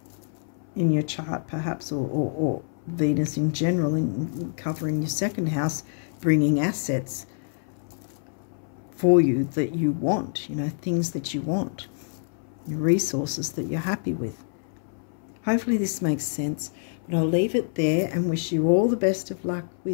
in your chart, perhaps, or Venus in general, in covering your second house, bringing assets for you that you want, things that you want, resources that you're happy with. Hopefully this makes sense, but I'll leave it there and wish you all the best of luck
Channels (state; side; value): silent; right; 61 dB below the other